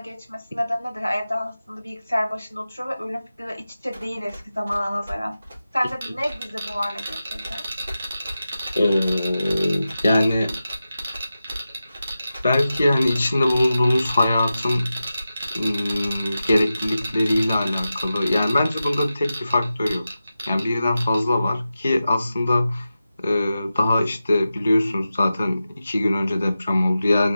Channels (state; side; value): inverted; both; correlation -0.92